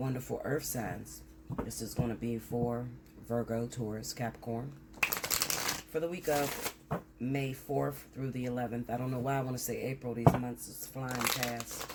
earth signs. This is going to be for Virgo, Taurus, Capricorn. For the week of May 4th through the 11th. I don't know why I want to say April. These months is flying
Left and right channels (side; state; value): both; identical; correlation 1.00